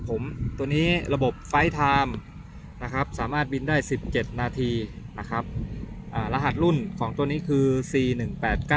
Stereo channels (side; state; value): both; identical; correlation 1.00